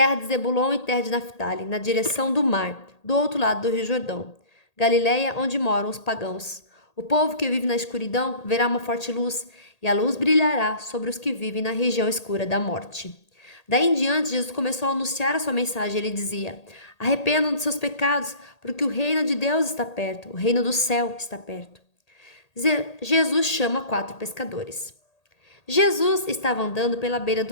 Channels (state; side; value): late; right; 1.8 ms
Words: de Zebulon e terra de Naftali, na direção do mar, do outro lado do Rio Jordão. Galileia, onde moram os pagãos. O povo que vive na escuridão verá uma forte luz, e a luz brilhará sobre os que vivem na região escura da morte. Daí em diante, Jesus começou a anunciar a sua mensagem. Ele dizia: Arrependam de seus pecados, porque o reino de Deus está perto, o reino do céu está perto. Jesus chama 4 pescadores. Jesus estava andando pela beira